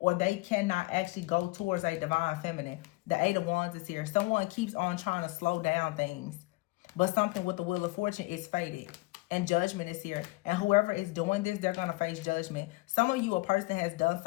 they cannot actually go towards a divine feminine. The Eight of Wands is here. Someone keeps on trying to slow down things, but something with the Wheel of Fortune is fated. And Judgment is here. And whoever is doing this, they're going to face judgment. Some of you, a person has done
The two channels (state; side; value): quieter; right; 23.1 dB